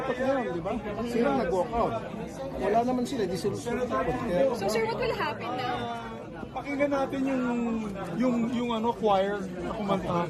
ngayon, di ba? Sila nag-walkout. Wala naman sila, di sila susunod. So, sir, what will happen now? Pakinggan natin yung choir na kumanta.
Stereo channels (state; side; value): identical; both; correlation 1.00